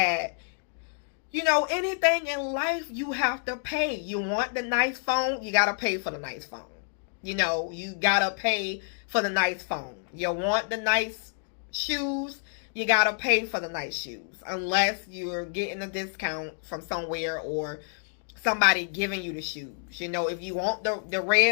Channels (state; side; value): silent; right; digital silence